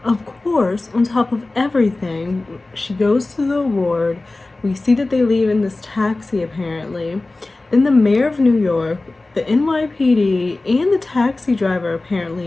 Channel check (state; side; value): quieter; right; 3.1 dB